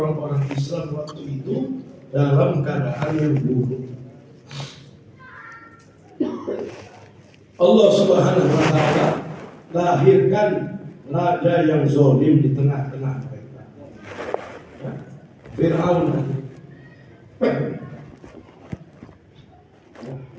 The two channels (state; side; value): identical; both; correlation 1.00